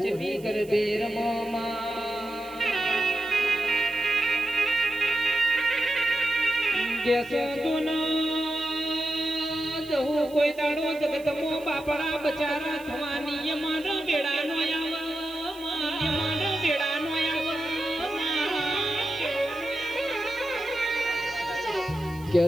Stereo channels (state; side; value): noise; right; hiss, 22 dB below the sound